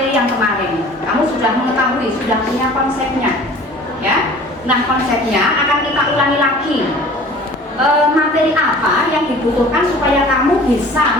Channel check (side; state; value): both; normal; correlation 0.46